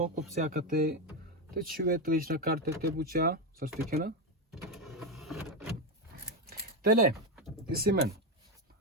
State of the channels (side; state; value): both; normal; correlation 0.10